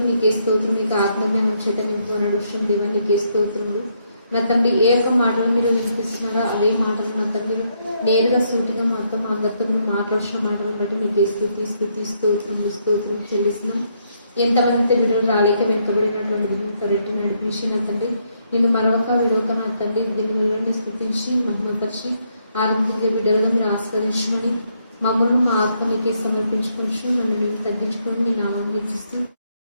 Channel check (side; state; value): both; inverted; correlation -0.74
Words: మీకే స్తోత్రం. మీకు ఆత్మజ్ఞానం చేత నింపుకున్నాడు విషయం దేవ నీకే స్తోత్రములు నా తండ్రి. ఏ ఒక్క మాటలు మీరు వినిపిస్తున్నారో అదే మాటలు నా తండ్రి నేరుగా సూటిగా మాతో మా అందరితో మీరు మాట్లాడుతున్న మాటలను బట్టి మీకే స్తుతి స్తుతి స్తోత్రములు స్తోత్రం చెల్లిస్తున్నాం. ఎంతమంది వీడియోలు రాలేక వెనుకబడినటువంటి రెట్టి నడిపించి నా తండ్రి, నేను మరొక విడవక నా తండ్రి దీనిని స్తుతించి మహిమపరిచి ఆనందించే బిడ్డలుగా మీరు ఆస్వాదించమని మమ్మల్ని మా ఆత్మ నీకే సమర్పించుకొని నన్ను నేను తగ్గించుకొని నేను ఆనందిస్తూ